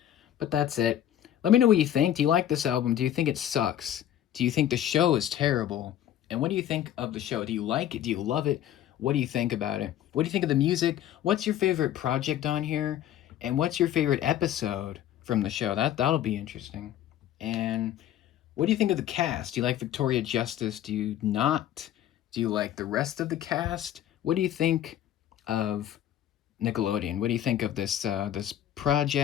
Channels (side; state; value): right; quieter; 11.5 dB